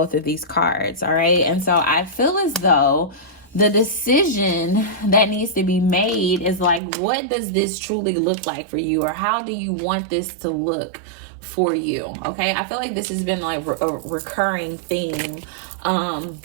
of these cards. All right. And so I feel as though the decision that needs to be made is like, what does this truly look like for you? Or how do you want this to look for you? Okay. I feel like this has been like a recurring theme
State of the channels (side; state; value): left; drops out; at 6.8 s